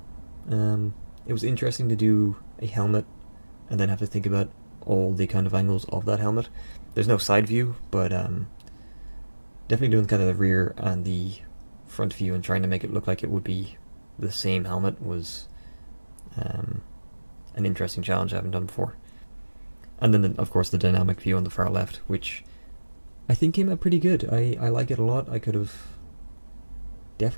It was interesting to do a helmet and then have to think about all the kind of angles of that helmet. There's no side view, but definitely doing kind of the rear and the front view and trying to make it look like it would be the same helmet was an interesting challenge I haven't done before. And then, of course, the dynamic view on the far left, which I think came out pretty good. I like it a lot. I could have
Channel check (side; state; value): both; inverted; correlation -1.00